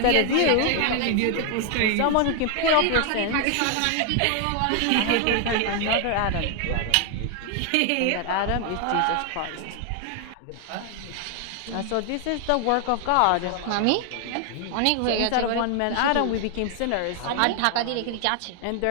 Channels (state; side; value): different; both; correlation 0.00